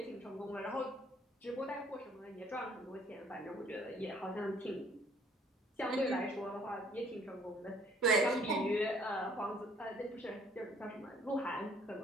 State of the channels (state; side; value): normal; both; correlation 0.60